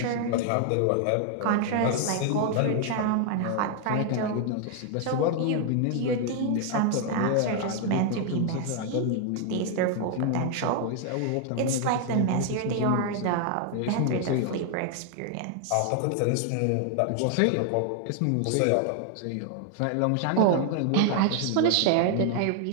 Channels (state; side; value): different; both; correlation 0.00